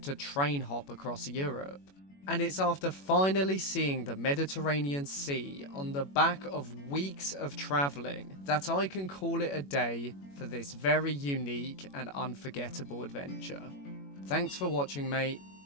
to train hop across Europe. And it's after finally seeing the Mediterranean Sea on the back of weeks of travelling that I can call it a day for this very unique and unforgettable adventure. Thanks for watching, mate.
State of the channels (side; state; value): right; late; 21 ms